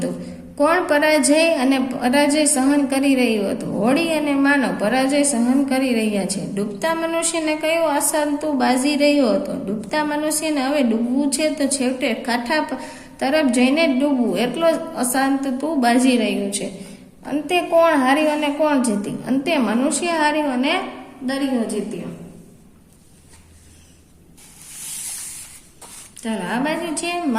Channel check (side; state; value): both; identical; correlation 1.00